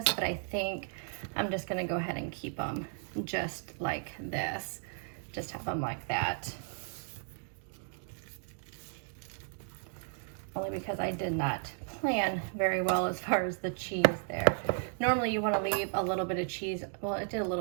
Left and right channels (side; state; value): left; silent; 55 dB below the other